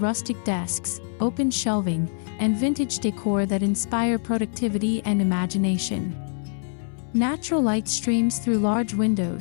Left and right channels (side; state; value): right; silent; 60 dB below the other